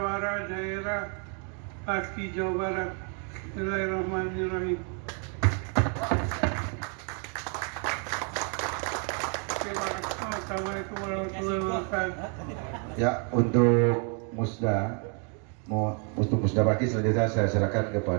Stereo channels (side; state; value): left; quieter; 39.5 dB